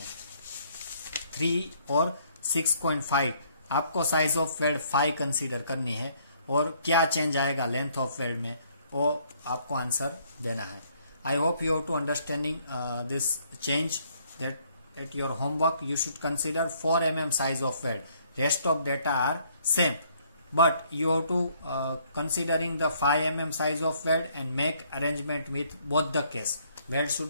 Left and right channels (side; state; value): both; inverted; correlation -0.65